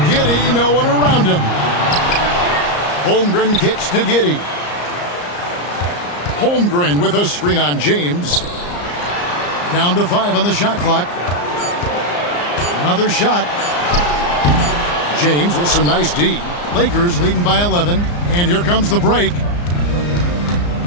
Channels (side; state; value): right; late; 34 ms